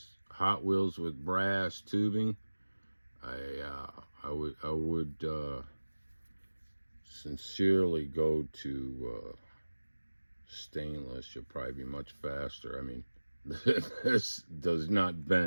Hot Wheels with brass tubing. I would sincerely go to stainless. You'll probably be much faster. I mean, this does not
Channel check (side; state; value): both; inverted; correlation -1.00